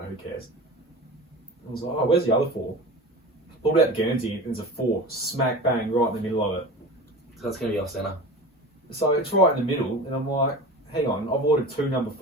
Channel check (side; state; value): both; normal; correlation 0.34